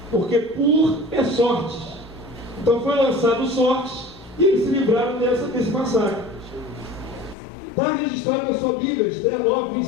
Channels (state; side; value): drops out; right; at 7.4 s